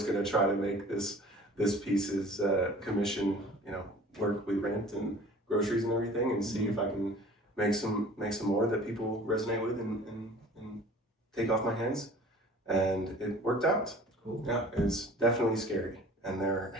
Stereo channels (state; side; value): normal; both; correlation 0.46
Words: gonna try to make this piece's commission, work with rent and groceries and everything, and see if I can make some more that people resonate with and take off my hands. And it worked out. Cool. Yeah, it's definitely scary. And there